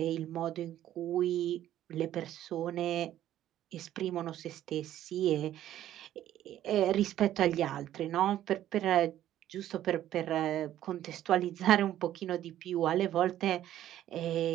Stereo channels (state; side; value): quieter; left; 12.4 dB